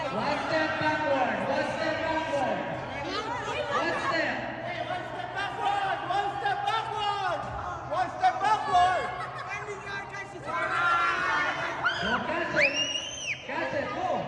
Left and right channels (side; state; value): both; identical; correlation 1.00